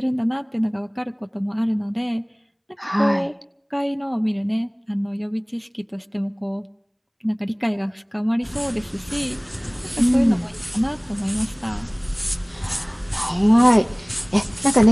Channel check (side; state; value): both; identical; correlation 1.00